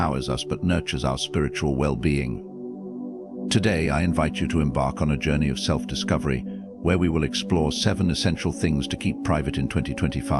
us but nurtures our spiritual well-being. Today, I invite you to embark on a journey of self-discovery where we will explore 7 essential things to keep private in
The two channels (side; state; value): both; identical; correlation 1.00